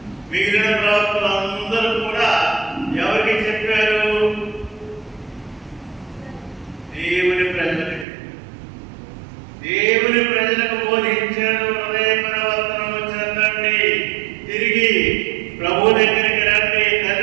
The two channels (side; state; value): left; drops out; at 8.1 s